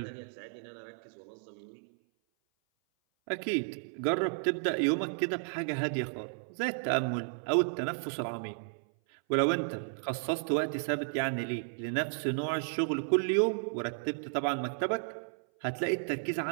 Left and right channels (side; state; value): left; silent; 56 dB below the other